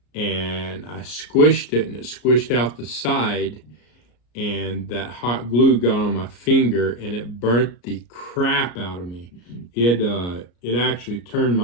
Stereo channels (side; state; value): right; late; 34 ms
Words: And I squished it, and it squished out the side, and that hot glue got on my finger, and it burnt the crap out of me. It actually turned